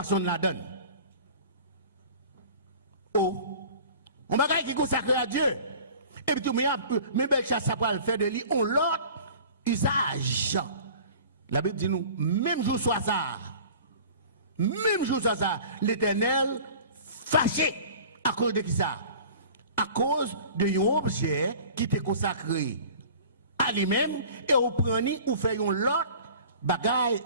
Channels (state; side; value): inverted; both; correlation -0.43